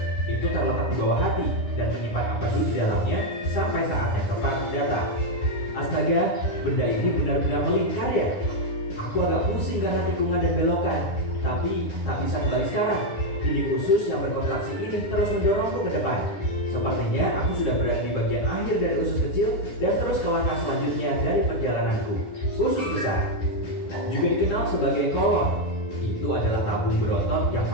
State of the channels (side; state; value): right; late; 9.9 ms